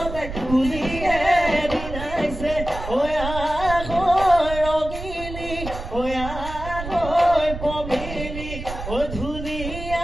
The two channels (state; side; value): noise; right; rumble, 9 dB below the sound